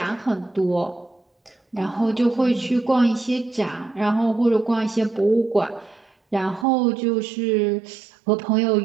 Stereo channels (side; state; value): left; drops out; at 6.7 s